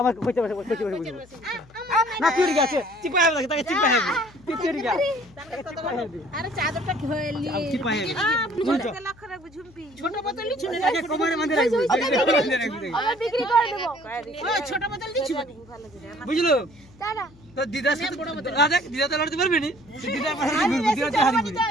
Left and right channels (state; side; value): noise; left; hum, 25 dB below the sound